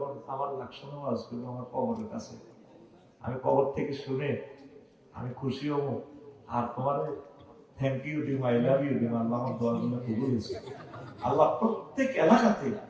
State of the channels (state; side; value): identical; both; correlation 1.00